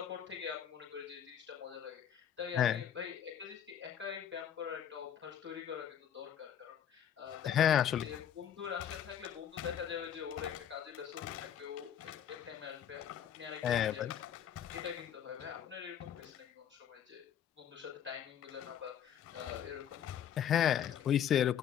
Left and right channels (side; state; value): right; quieter; 9.4 dB